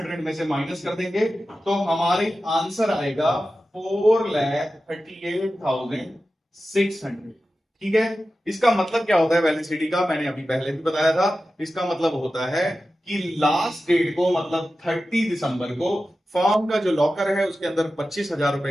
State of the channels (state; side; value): normal; both; correlation 0.94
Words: में से माइनस कर देंगे, तो हमारे आंसर आएगा 4,38,600। ठीक है। इसका मतलब क्या होता है वैलिडिटी का, मैंने अभी पहले भी बताया था। इसका मतलब होता है कि लास्ट डेट को, मतलब 30 दिसंबर को, फर्म का जो लॉकर है उसके अंदर 25,000